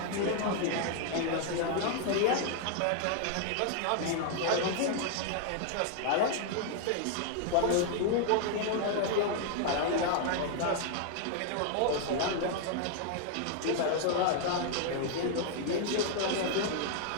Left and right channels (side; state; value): both; different; correlation 0.00